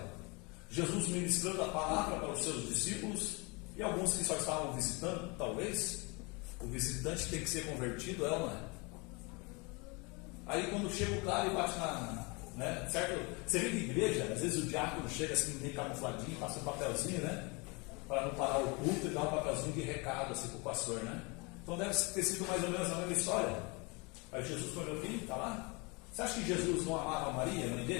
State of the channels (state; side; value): quieter; right; 28.6 dB